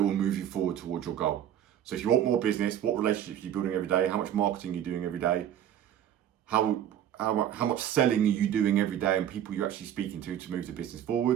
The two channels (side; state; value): left; quieter; 10.5 dB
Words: will move you forward towards your goal? So if you want more business, what relationships are you building every day? How much marketing are you doing every day? How much selling are you doing every day, and people you're actually speaking to move the business